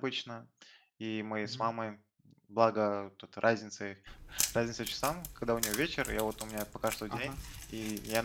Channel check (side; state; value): both; identical; correlation 1.00